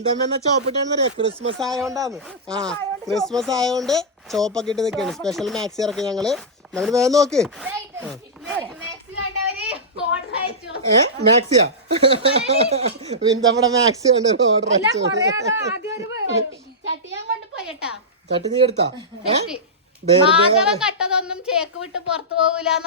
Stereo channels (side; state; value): both; normal; correlation -0.14